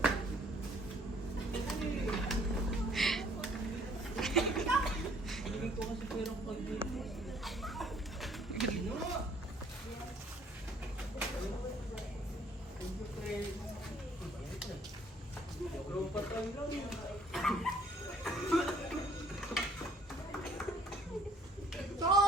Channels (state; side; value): normal; both; correlation 0.60